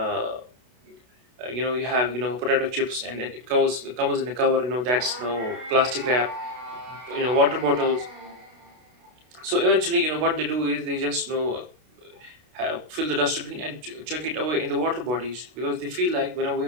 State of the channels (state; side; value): late; left; 32 ms